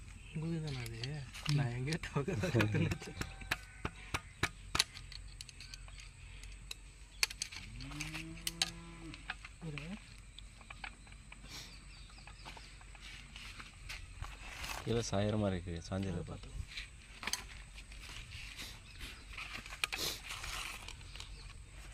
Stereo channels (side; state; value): both; identical; correlation 1.00